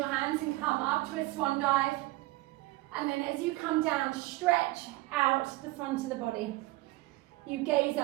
hands and come up to a swan dive. And then as you come down, stretch out the front of the body. You gaze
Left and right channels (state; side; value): quieter; left; 20.3 dB